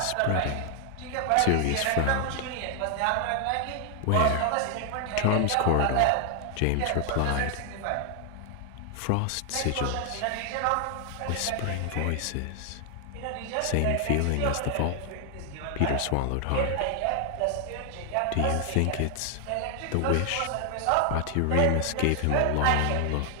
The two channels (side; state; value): both; different; correlation 0.00